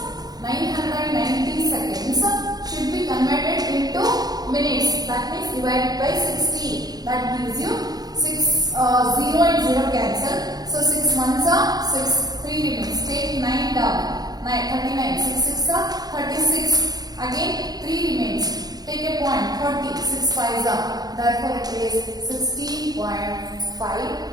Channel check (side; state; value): left; late; 0.19 ms